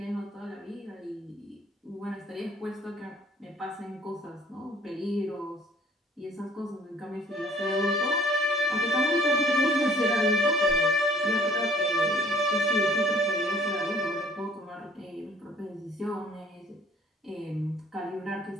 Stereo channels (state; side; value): normal; both; correlation 0.56